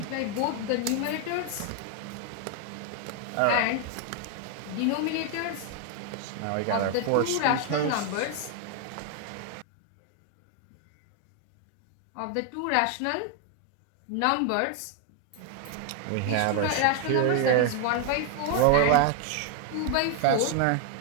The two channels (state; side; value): different; both; correlation 0.00